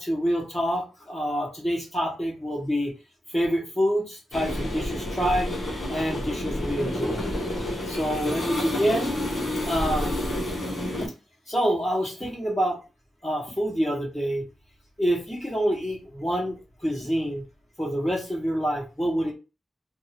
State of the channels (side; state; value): both; normal; correlation 0.88